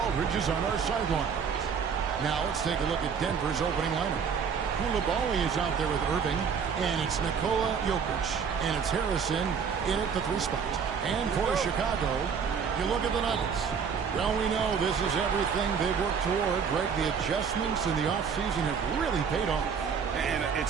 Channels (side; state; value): left; quieter; 6.5 dB